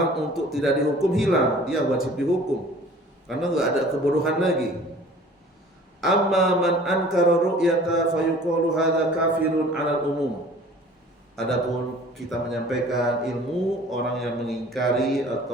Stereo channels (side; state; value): both; normal; correlation 0.48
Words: untuk tidak dihukum, hilang, dia wajib dihukum karena nggak ada kebodohan lagi. Amma man ankara ru'yata fayuqalu hadza kafirun 'alal umum. Adapun kita menyampaikan ilmu, orang yang mengingkari